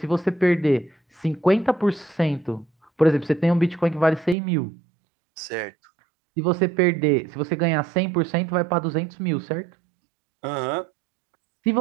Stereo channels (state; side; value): drops out; left; at 4.4 s